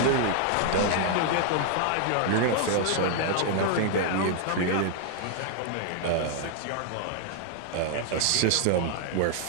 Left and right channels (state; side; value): different; both; correlation 0.00